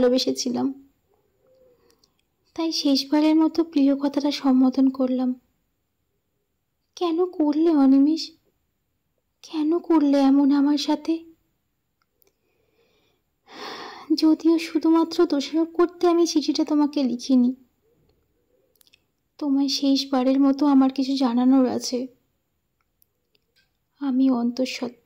তাই শেষবারের মতো প্রিয় কথাটা সম্বোধন করলাম। কেন করলে অনিমেষ? কেন করলে এমন আমার সাথে? যদিও শুধুমাত্র দোষারোপ করতে আমি চিঠিটা তোমাকে লিখিনি, তোমায় শেষবারের মতো আমার কিছু জানানোর আছে। আমি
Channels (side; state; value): both; identical; correlation 1.00